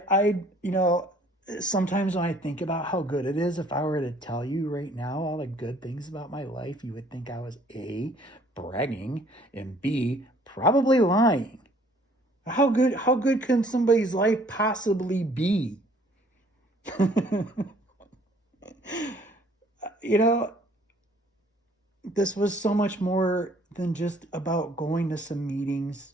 Sometimes when I think about how good it is, if I were to tell you right now all the good things about my life, you would think I was A, bragging, and B, probably lying. How good can somebody's life possibly be? This was so much more than just about going to some meetings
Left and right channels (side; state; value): both; normal; correlation 0.58